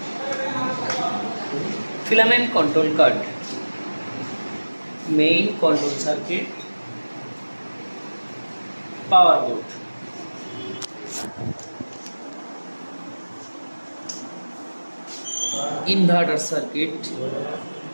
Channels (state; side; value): inverted; both; correlation -1.00